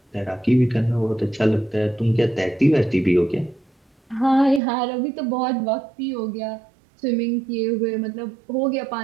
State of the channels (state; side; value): drops out; left; at 4.6 s